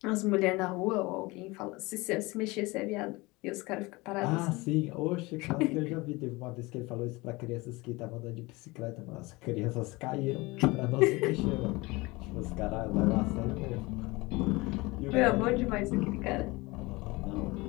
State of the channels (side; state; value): right; quieter; 23.2 dB